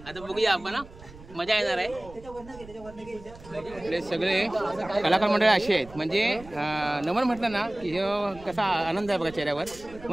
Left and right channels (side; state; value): right; noise; rumble, 19 dB below the sound